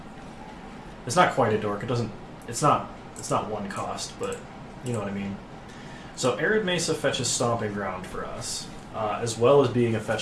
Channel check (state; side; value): identical; both; correlation 1.00